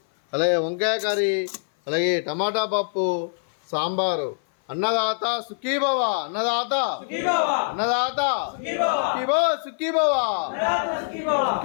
అలాగే వంకాయ కర్రీ, అలాగే టమాటా పప్పు, సాంబారు. అన్నదాత సుఖీ భవ, అన్నదాత అన్నదాత సుఖీ భవ, సుఖీ భవ, సుఖీ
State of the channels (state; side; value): silent; right; 57 dB below the other